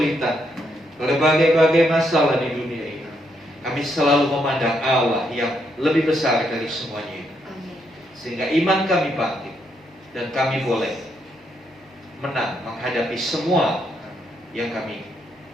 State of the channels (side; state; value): both; normal; correlation 0.77